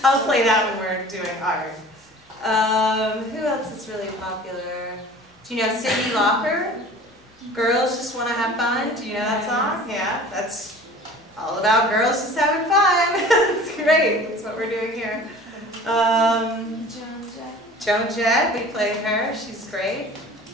play that when we're doing art. Who else is really popular? Do you know Cyndi Lauper? Girls Just Want to Have Fun. Do you know that song? Yeah, that's all about girls just having fun. It's great. That's what we're doing here. Joan Jett, we played her. She's great.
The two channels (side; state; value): both; normal; correlation 0.44